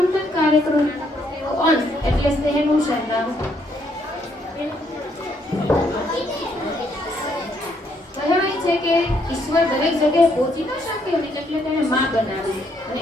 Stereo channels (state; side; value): normal; both; correlation 0.72